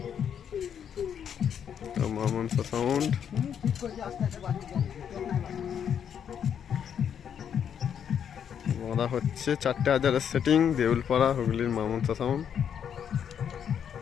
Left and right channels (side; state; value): right; quieter; 8.3 dB